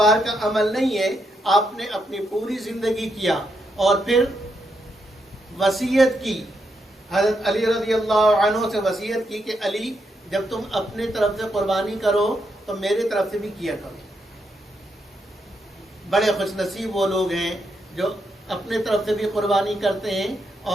کا عمل نہیں ہے، آپ نے اپنی پوری زندگی کیا، اور پھر وصیت کی، حضرت علی رضی اللہ عنہ سے وصیت کی کہ علی جب تم اپنے طرف سے قربانی کرو تو میرے طرف سے بھی کیا کرو۔ بڑے خوش نصیب وہ لوگ ہیں جو اپنے طرف سے بھی قربانی کرتے ہیں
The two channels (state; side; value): normal; both; correlation 0.80